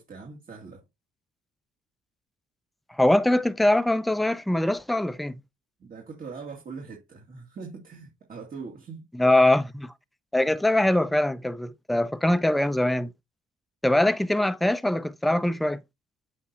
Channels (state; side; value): normal; both; correlation 0.98